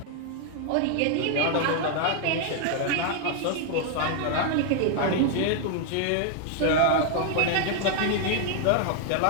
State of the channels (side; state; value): both; different; correlation 0.00